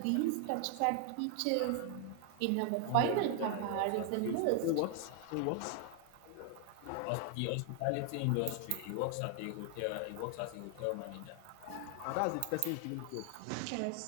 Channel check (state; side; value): different; both; correlation 0.00